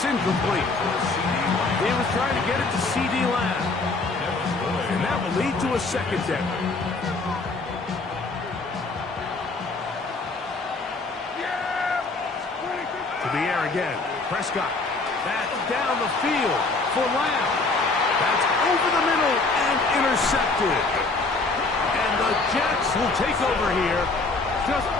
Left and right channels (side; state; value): right; quieter; 3.6 dB